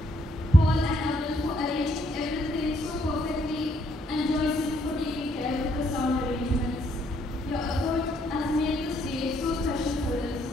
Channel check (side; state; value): both; normal; correlation 0.71